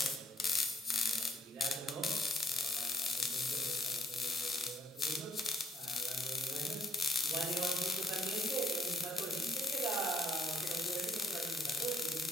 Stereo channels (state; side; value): normal; both; correlation 0.68